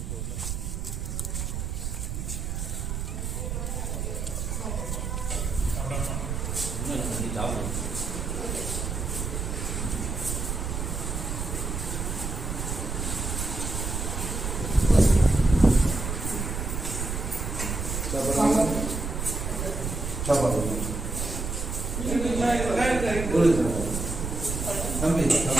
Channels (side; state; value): right; noise; rumble, 3 dB below the sound